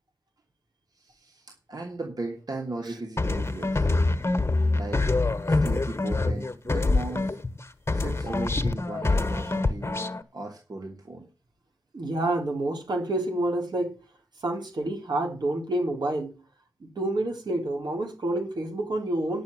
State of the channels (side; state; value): both; normal; correlation 0.85